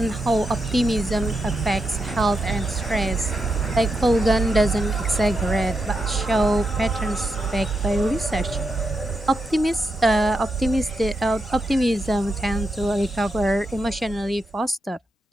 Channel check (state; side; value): normal; both; correlation 0.85